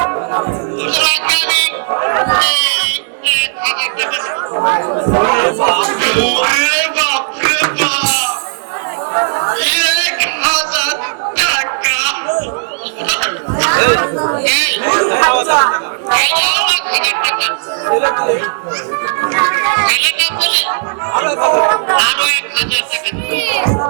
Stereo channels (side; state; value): left; silent; digital silence